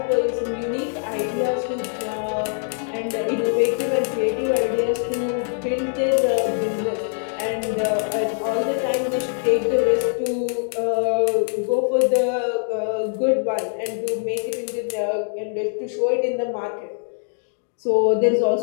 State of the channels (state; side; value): silent; right; digital silence